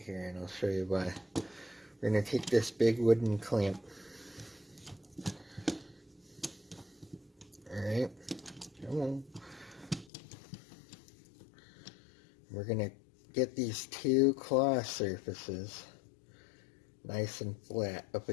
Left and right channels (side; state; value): right; drops out; at 10.1 s